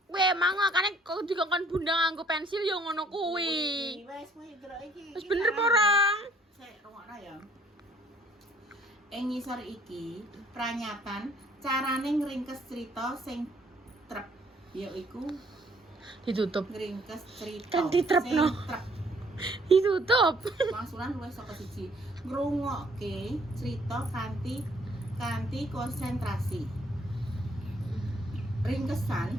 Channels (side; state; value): both; normal; correlation 0.61